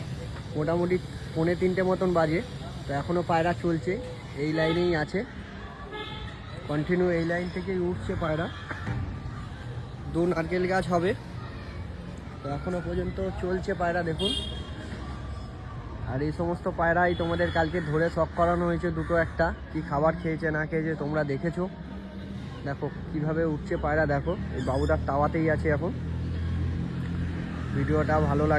মোটামুটি 2:45 মতন বাজে। তো এখনও পায়রা চলছে, এই লাইনেই আছে, কন্টিনিউ এই লাইন থেকেই উঠছে পায়রা। 2 নারকেল গাছ হবে। তো এখনো পর্যন্ত চলছে পায়রা, দেখুন। আর এই সমস্ত পায়রাই তোমাদের কালকে ধরে শখ করানো হয়েছে, দুটো একটা কি খাবার খেয়েছে না খেয়েছে তোমরা দেখেছো। দেখো কিভাবে উঠছে পায়রা, দেখো এই বাবুদার তাওয়াতেই আছে এখন। ভিডিওটা ভালো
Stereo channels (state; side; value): identical; both; correlation 1.00